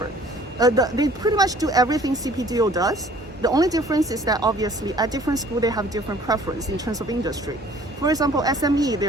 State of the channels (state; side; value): normal; both; correlation 0.54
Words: They pretty much do everything CPDO does. The only difference is that obviously at different schools they have different preference in terms of industry. For example, SME, they